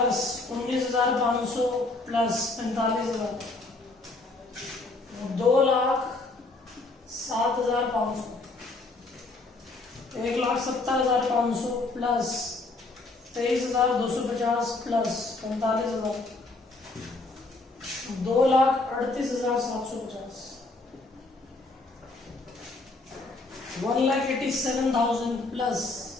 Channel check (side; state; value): right; quieter; 3.3 dB